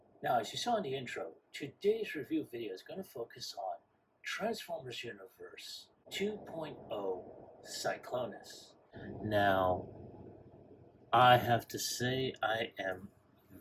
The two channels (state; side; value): identical; both; correlation 1.00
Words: Now, as you saw in the intro, today's review video is going to focus on Transformers Universe 2.0 Cyclonus. Now, I have to say I am